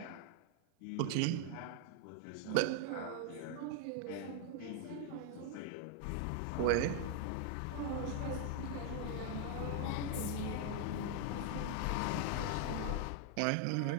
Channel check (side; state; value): both; different; correlation 0.00